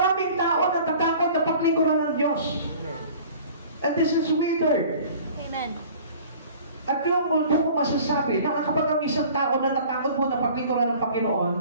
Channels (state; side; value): inverted; both; correlation -0.47